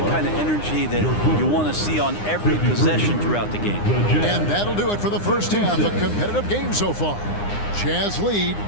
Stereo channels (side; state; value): right; late; 9.8 ms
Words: kind of energy that you want to see on every possession throughout the game. And that'll do it for the first half. A competitive game so far. Jazz lead